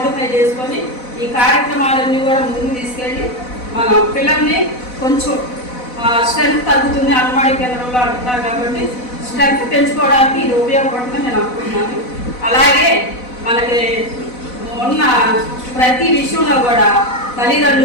చేసుకొని ఈ కార్యక్రమాలన్నీ కూడా ముందుకు తీసుకెళ్ళి మనం పిల్లల్ని కొంచెం స్ట్రెంత్ తగ్గుతుంది అంగన్వాడీ కేంద్రంలో అంటున్నారు కాబట్టి స్ట్రెంత్ పెంచుకోవడానికి ఇది ఉపయోగపడుతుందని నేను అనుకుంటున్నాను. అలాగే మనకి ఉన్న ప్రతి విషయంలో కూడా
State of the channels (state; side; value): late; right; 4.0 ms